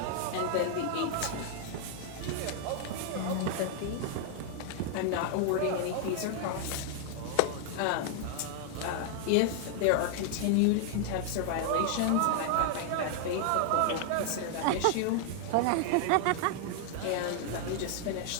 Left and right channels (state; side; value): different; both; correlation 0.00